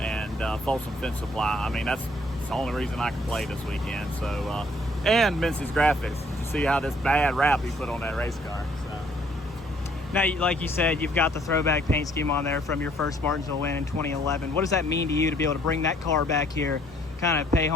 Folsom Fence Supply. I mean, that's the only reason I can play this weekend. So, and Mincy's Graphics, to see how this bad rap he put on that race car. So. Now, like you said, you've got the throwback paint scheme on there from your first Martinsville win in 2011. What does that mean to you to be able to bring that car back here, kind of pay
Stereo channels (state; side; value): normal; both; correlation 0.63